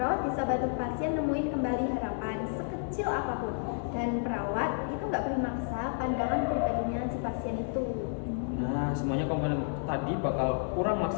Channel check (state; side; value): silent; right; digital silence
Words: bisa bantu pasien nemuin kembali harapan sekecil apapun, dan perawat itu nggak boleh maksa pandangan pribadinya si pasien itu. Nah, semuanya komponen tadi bakal kurang